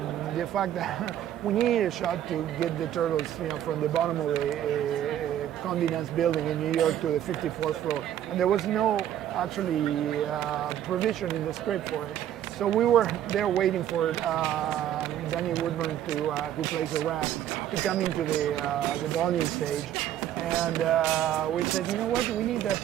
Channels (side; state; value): left; quieter; 11.2 dB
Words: the fact that we needed a shot to get the turtles, from the bottom of a Condé Nast building in New York to the 54th floor, and there was no actually provision in the script for it. So we were there waiting for Danny Woodburn, who plays the rat, to come into the volume stage. And we said, you know what, we need that